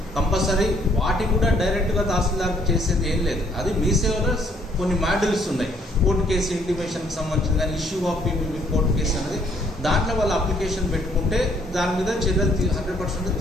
కంపల్సరీ వాటి కూడా డైరెక్ట్గా తహసీల్దార్కి చేసేది ఏం లేదు. అది మీ సేవలో కొన్ని మాడ్యూల్స్ ఉన్నాయి. కోర్టు కేసు ఇంటిమేషన్కి సంబంధించిన కానీ issue of PPP court case అనేది దాంట్లో వాళ్ళు అప్లికేషన్ పెట్టుకుంటే దాని మీద చర్యలు 100%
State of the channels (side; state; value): both; normal; correlation 0.65